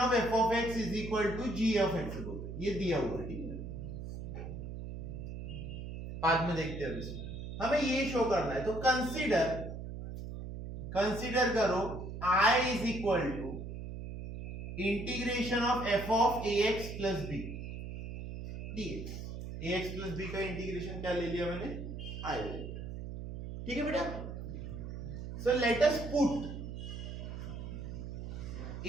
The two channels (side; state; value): right; noise; hum, 7 dB below the sound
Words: f of x is equal to g of x, ये दिया हुआ है. ठीक है, बाद में देखते हैं. इसमें हमें ये शो करना है. तो कंसीडर करो I is equal to integration of f of a x plus b dx. A x plus b का इंटीग्रेशन क्या ले लिया मैंने, I. ठीक है बेटा. So let us put